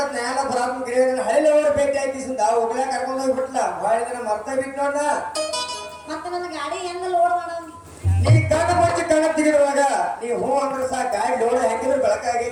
ಎಲ್ಲ ಬರಾತ್ಮ ಹಳ್ಳಿ ಅವ್ರ ಭೇಟಿ ಆಯ್ತಿಸಿಂದ ಹೋಗ್ಲಾ ಕರ್ಕೊಂಡು ಹೋಗ್ಬಿಟ್ಲ ಭಾಳ ದಿನ ಮರ್ತ ಬಿಟ್ಟು ನೋಡ ಮತ್ತೆ ನನ್ನ ಗಾಡಿ ಹೆಂಗ ಲೋಡ್ ಮಾಡೋದು ನೀ ಕಣ್ಣ ಮುಚ್ಚಿ ಕಣ್ಣ ತೆಗಿರುವಾಗ ನೀ ಹೂ ಅಂದ್ರೆ ಸಾ ಗಾಡಿ ಲೋಡ್ ಹೆಂಗಿದ್ರು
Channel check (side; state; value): both; identical; correlation 1.00